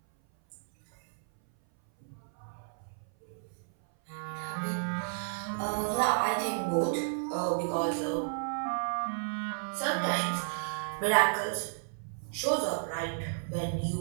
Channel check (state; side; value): silent; left; 56 dB below the other